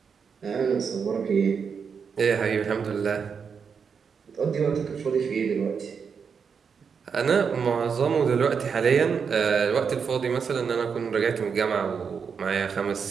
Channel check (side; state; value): left; quieter; 6.2 dB